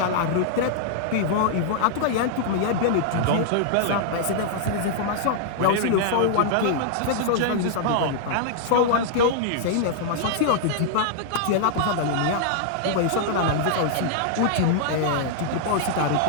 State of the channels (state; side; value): different; both; correlation -0.01